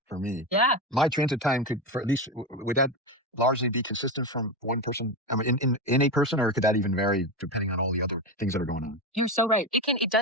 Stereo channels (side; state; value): both; normal; correlation 0.16